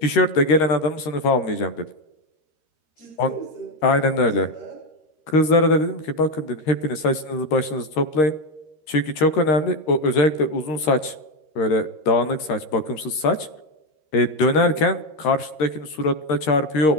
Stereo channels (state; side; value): late; right; 13 ms